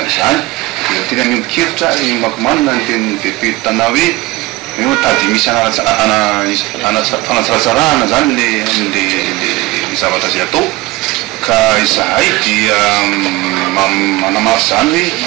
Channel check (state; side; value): quieter; left; 19.9 dB